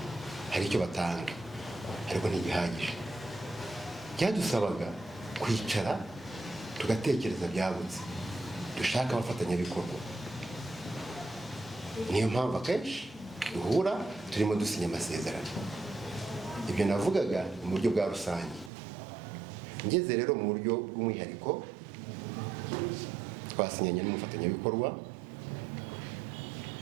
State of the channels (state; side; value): drops out; left; at 18.7 s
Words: hari icyo batanga ariko ntibihagije. Byadusabaga kwicara tugatekereza byagutse, dushaka abafatanyabikorwa. Niyo mpamvu akenshi duhura turimo dusinya amasezerano. Ibyo navugaga mu buryo bwa rusange. Ngeze rero mu buryo bw'umwihariko, twasinyanye n'umufatanyabikorwa